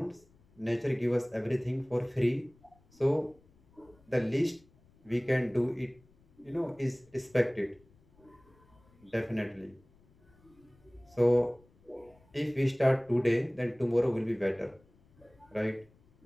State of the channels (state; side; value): noise; left; rumble, 30 dB below the sound